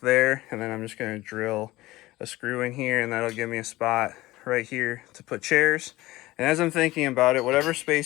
there, and then I'm just gonna drill a screw in here, and that'll give me a spot right here to put chairs. And as I'm thinking about it, whatever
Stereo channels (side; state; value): right; quieter; 18.4 dB